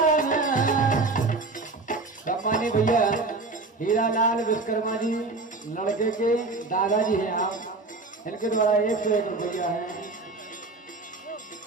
सम्मानी भैया हीरालाल विश्वकर्मा जी लड़के के दादाजी हैं आप, इनके द्वारा 101 रुपया है।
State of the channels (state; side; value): quieter; left; 3.6 dB